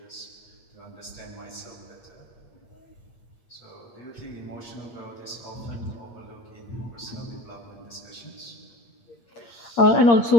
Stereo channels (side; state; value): right; late; 8.6 ms